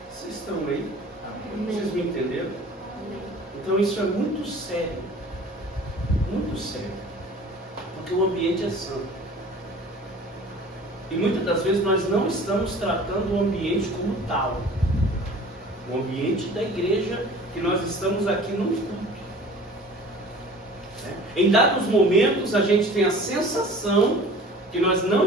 Vocês estão aí? Vocês me entenderam? Então isso é muito sério. Muito sério. Porque o ambiente é santo. E muitas das vezes nós não estamos tratando o ambiente como tal. O ambiente da igreja, que nós estamos aqui no culto. Em dados momentos a gente tem a sensação que nós não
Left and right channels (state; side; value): normal; both; correlation 0.45